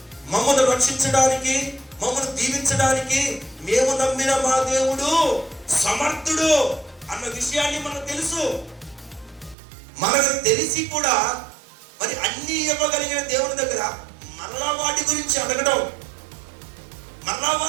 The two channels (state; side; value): drops out; left; at 9.6 s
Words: మమ్మల్ని రక్షించడానికి, మమ్మల్ని దీవించడానికి మేము నమ్మిన మా దేవుడు సమర్థుడు అన్న విషయాన్ని మనకు తెలుసు. మనకు తెలిసి కూడా మరి అన్ని ఇవ్వగలిగిన దేవుని దగ్గర మరలా వాటి గురించి అడగడం, మరలా